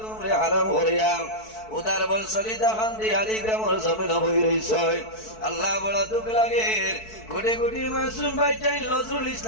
গুমরে হারাম করিয়া উদার বল সলিতা খান্দি আলী গ্রামের জমিন বই রইছ আল্লাহ বড় দুঃখ লাগে কোটি কোটি মাসুম ভাই চাই নজরুল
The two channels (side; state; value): right; late; 4.6 ms